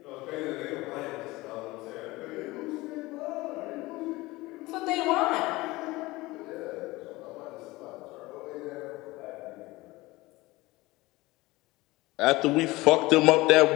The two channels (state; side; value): quieter; right; 20.5 dB